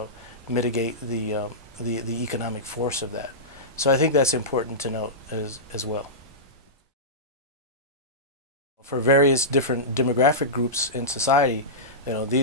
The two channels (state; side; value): normal; both; correlation -0.15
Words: mitigate the economic force of that. So I think that's important to note as well. For various different demographic groups in society,